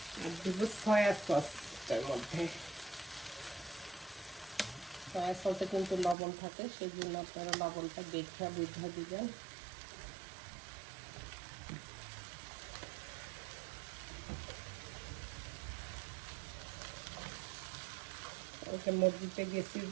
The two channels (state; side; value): drops out; left; at 6.2 s